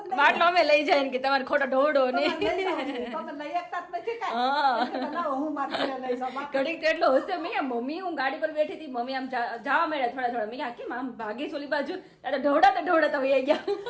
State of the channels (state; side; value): identical; both; correlation 1.00